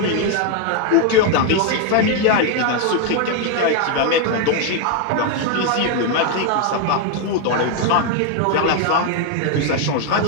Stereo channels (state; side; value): different; both; correlation 0.01